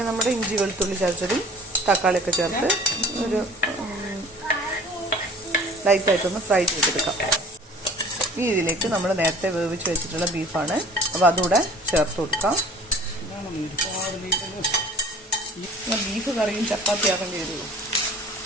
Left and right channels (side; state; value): both; normal; correlation 0.47